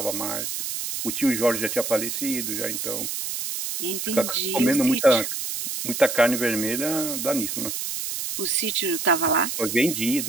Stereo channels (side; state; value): right; noise; hiss, 4 dB below the sound